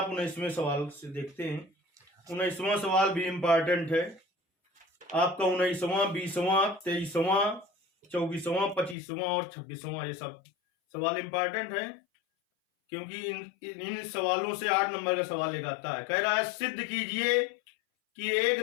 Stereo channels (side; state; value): right; drops out; at 9.0 s